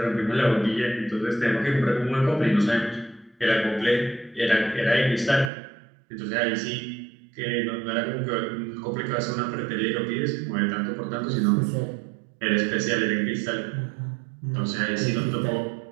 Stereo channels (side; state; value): left; drops out; at 5.5 s